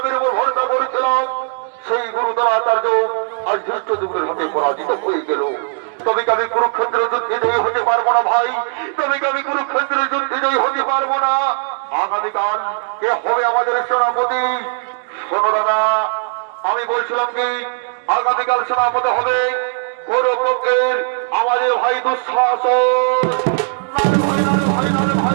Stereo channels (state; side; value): silent; left; 62 dB below the other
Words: উপর ভরসা করেছিলাম সেই গুরুদরাচার্য আজ দুষ্ট যুগের হাতে পরাজিত হয়ে গেল। তবে কি আমি কুরুক্ষেত্রের যুদ্ধে জয়ী হতে পারবো না ভাই? তবে কি আমি কুরুক্ষেত্রের যুদ্ধে জয়ী হতে পারবো না? আগামীকাল কে হবে আমাদের সেনাপতি? শোনো দাদা, আমি বলছিলাম কি আগামীকাল সেনাপতি হবে কৌরব পক্ষের আমাদের ভাই দুঃশাসন।